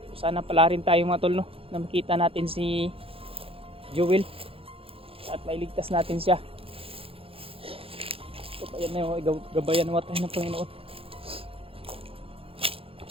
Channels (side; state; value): left; late; 0.27 ms